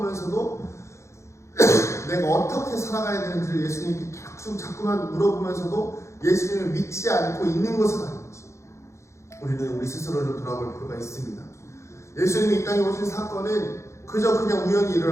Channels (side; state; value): right; late; 0.14 ms